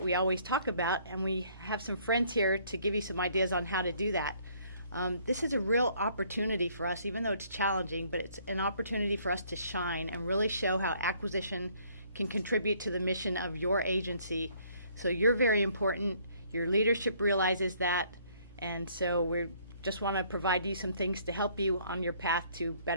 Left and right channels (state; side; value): inverted; both; correlation -0.63